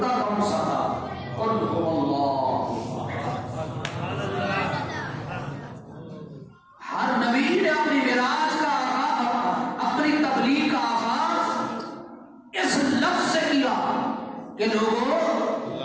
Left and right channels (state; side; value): identical; both; correlation 1.00